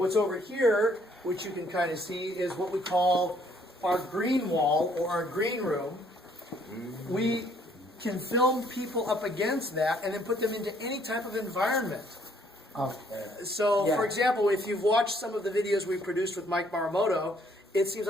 over here, which you can kind of see, is what we call our green wall or our green room. We can film people up against that and then put them into any type of environment. So, for example, if you've watched some of the videos we produced with Mike Maramoto, it seems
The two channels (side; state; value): both; normal; correlation 0.64